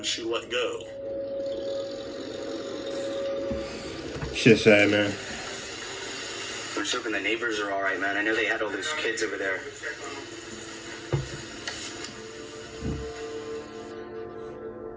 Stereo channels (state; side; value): identical; both; correlation 1.00